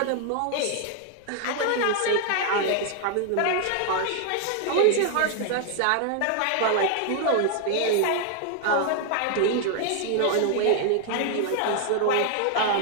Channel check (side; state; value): both; different; correlation 0.00